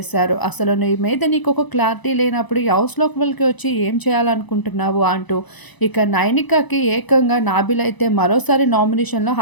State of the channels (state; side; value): late; right; 1.0 ms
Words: అసలు నీ మీద నీకొక క్లారిటీ లేనప్పుడు ఈ హౌస్ లోపలికి వచ్చి ఏం చేయాలనుకుంటున్నావు అంటూ. ఇక నైనికకి ఏకంగా నాబిల్ అయితే మరోసారి నామినేషన్‌లో